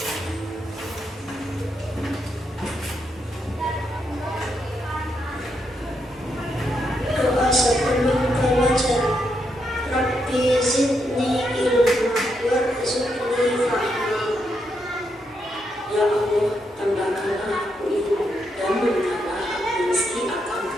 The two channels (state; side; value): normal; both; correlation 0.80